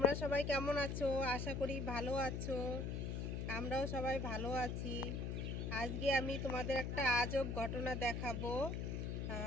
সবাই কেমন আছো? আশা করি ভালো আছো। আমরাও সবাই ভালো আছি। আজকে আমি তোমাদের একটা আজব ঘটনা দেখাবো।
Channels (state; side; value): noise; left; hum, 2 dB below the sound